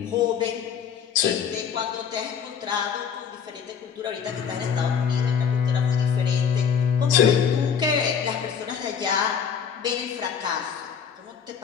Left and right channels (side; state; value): right; quieter; 7.2 dB